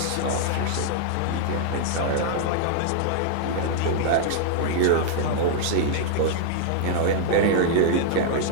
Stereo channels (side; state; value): both; different; correlation -0.01